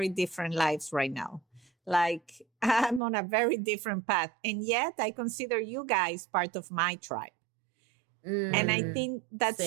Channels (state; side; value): drops out; left; at 3.0 s